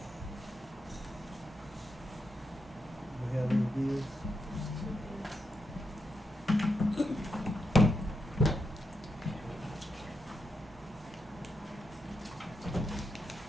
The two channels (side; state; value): both; normal; correlation 0.84